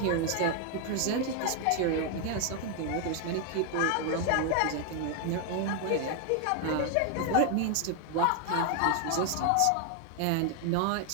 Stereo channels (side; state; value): both; different; correlation 0.00